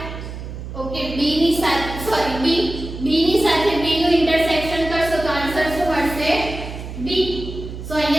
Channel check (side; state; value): right; noise; hum, 9 dB below the sound